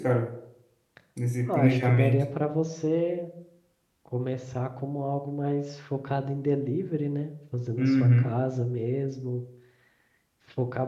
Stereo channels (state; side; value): identical; both; correlation 1.00